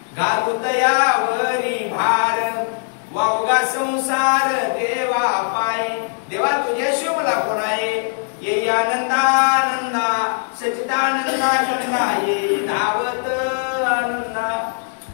घालूत यावरी भार, वावगा संसार देवा पाय. देवा तुझ्याशी मला कोण आहे, ये आनंदानंदा सचिदानंदा गंगा, ये धावत आनंदा.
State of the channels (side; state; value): right; silent; digital silence